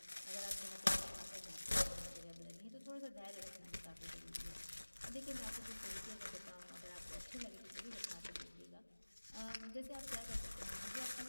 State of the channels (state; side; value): inverted; both; correlation -1.00